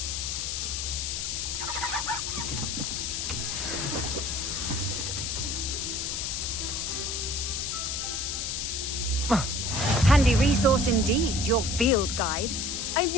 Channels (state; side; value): noise; left; hiss, 2 dB below the sound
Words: Handy resource indeed, your field guide.